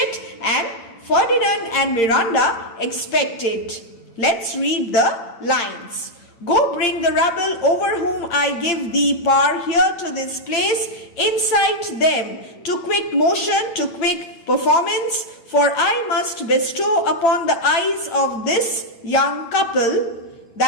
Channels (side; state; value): right; late; 9.0 ms